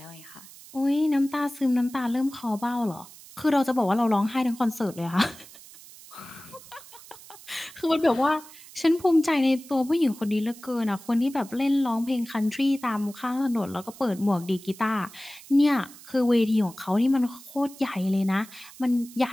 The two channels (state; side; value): noise; right; hiss, 19 dB below the sound